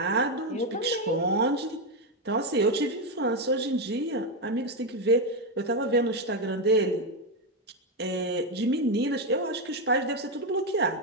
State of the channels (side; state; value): both; normal; correlation 0.07